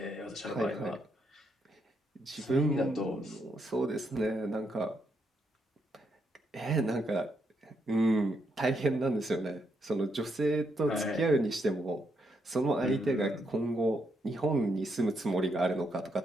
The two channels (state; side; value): normal; both; correlation 0.78